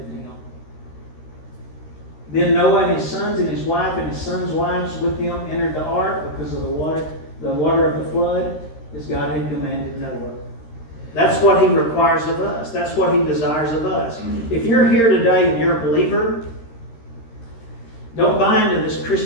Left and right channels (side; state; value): right; late; 13 ms